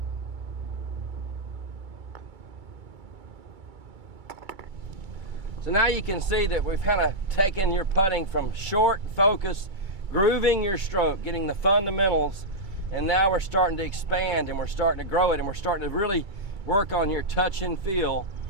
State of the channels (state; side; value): late; left; 2.3 ms